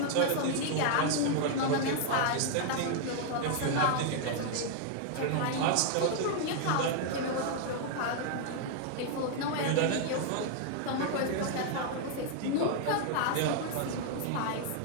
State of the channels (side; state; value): both; different; correlation 0.00